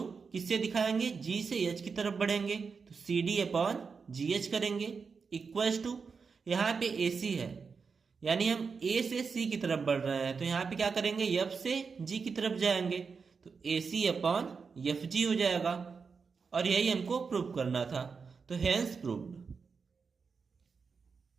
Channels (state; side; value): quieter; left; 5.3 dB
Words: किससे दिखाएंगे? G से H की तरफ बढ़ेंगे तो CD अपॉन GH करेंगे इक्वल्स टू यहाँ पे AC है, यानी हम A से C की तरफ बढ़ रहे हैं तो यहाँ पे क्या करेंगे? F से G की तरफ जाएंगे तो AC अपॉन FG हो जाएगा। और यही हमको प्रूव करना था, तो हेंस प्रूव्ड।